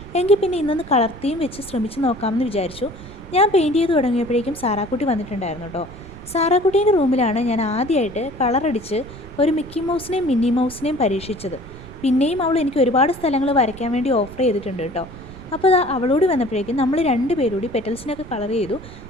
എങ്കിൽ പിന്നെ ഇന്നൊന്ന് കളർ തീം വെച്ച് ശ്രമിച്ച് നോക്കാമെന്ന് വിചാരിച്ചു. ഞാൻ പെയിൻറ്റ് ചെയ്ത് തുടങ്ങിയപ്പോഴേക്കും സാറാക്കുട്ടി വന്നിട്ടുണ്ടായിരുന്നു കേട്ടോ. സാറാക്കുട്ടീൻ്റെ റൂമിലാണ് ഞാൻ ആദ്യമായിട്ട് കളറടിച്ച് ഒരു മിക്കി മൗസിനെയും മിന്നി മൗസിനെയും പരീക്ഷിച്ചത്. പിന്നെയും അവൾ എനിക്ക് ഒരുപാട് സ്ഥലങ്ങൾ വരയ്ക്കാൻ വേണ്ടി ഓഫർ ചെയ്തിട്ടുണ്ട് കേട്ടോ. അപ്പോൾ അവളോട് വന്നപ്പോഴേക്കും നമ്മൾ രണ്ടുപേരൂടി പെറ്റൽസിനൊക്കെ കളർ ചെയ്തു.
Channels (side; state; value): right; noise; rumble, 16 dB below the sound